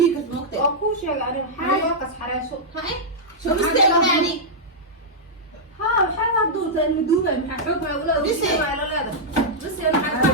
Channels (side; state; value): both; normal; correlation -0.08